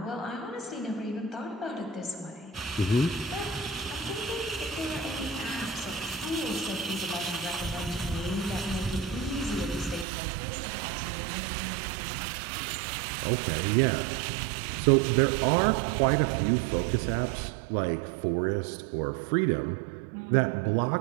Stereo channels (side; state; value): left; drops out; at 10.1 s